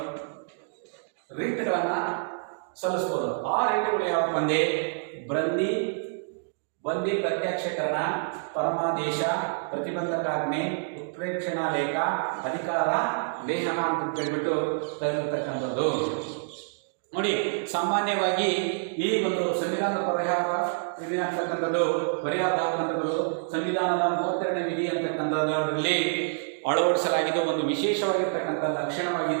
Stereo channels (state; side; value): silent; left; digital silence